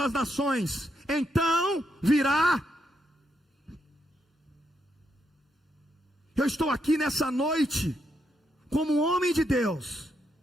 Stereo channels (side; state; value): both; normal; correlation 0.80